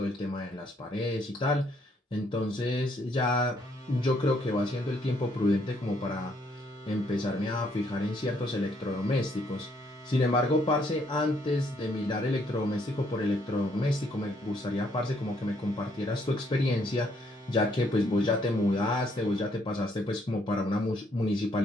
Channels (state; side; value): normal; both; correlation 0.69